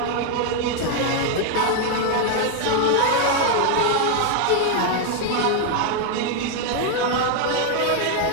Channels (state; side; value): different; both; correlation 0.00